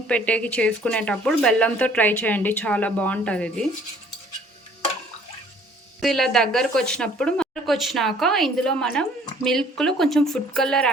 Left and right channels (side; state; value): both; normal; correlation 0.56